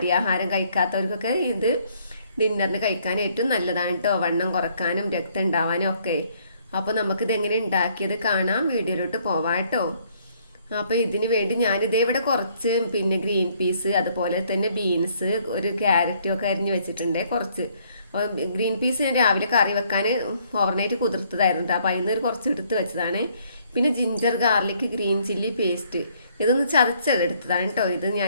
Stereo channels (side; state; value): both; inverted; correlation -0.66